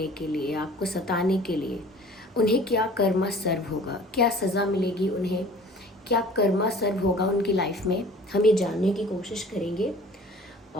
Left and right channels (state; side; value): normal; both; correlation 0.47